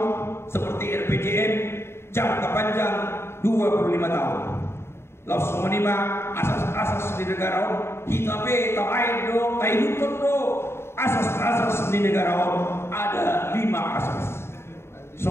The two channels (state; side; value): late; right; 0.12 ms